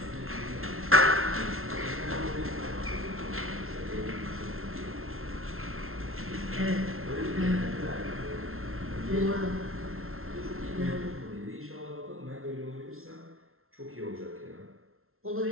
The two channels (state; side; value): late; left; 0.62 ms